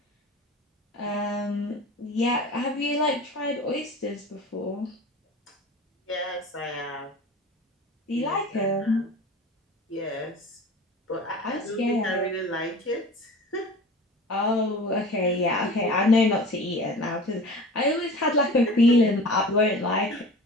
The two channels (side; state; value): both; normal; correlation 0.38